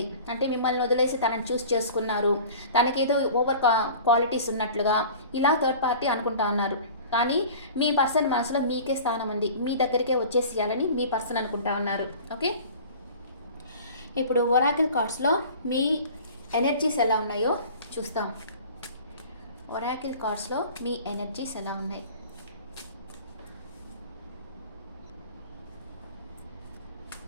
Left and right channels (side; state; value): both; inverted; correlation -0.42